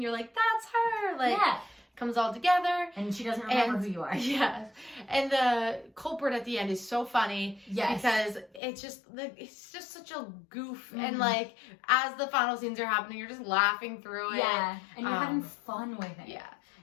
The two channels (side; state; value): right; drops out; at 8.6 s